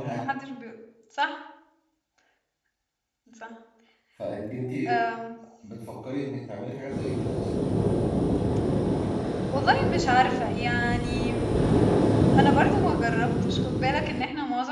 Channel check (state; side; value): identical; both; correlation 1.00